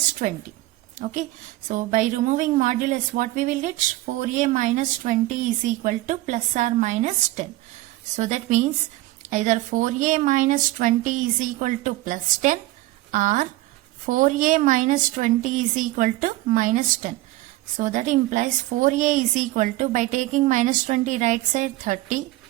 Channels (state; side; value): quieter; left; 18.0 dB